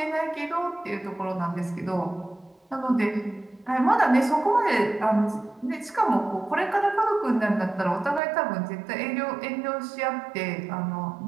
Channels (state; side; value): drops out; left; at 8.2 s